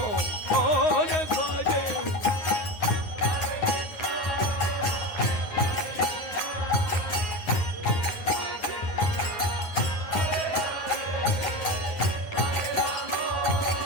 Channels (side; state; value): right; late; 9.6 ms